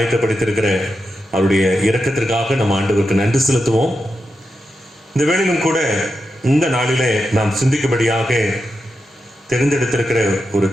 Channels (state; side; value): normal; both; correlation 0.88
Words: அவருடைய இரக்கத்திற்காக நம்ம ஆண்டவருக்கு நன்றி செலுத்துவோம். இந்த வேளையிலும் கூட இந்த நாளிலே நாம் சிந்திக்கும்படியாக தெரிந்தெடுத்திருக்கிற ஒரு